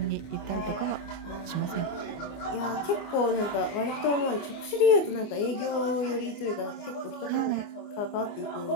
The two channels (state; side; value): late; right; 24 ms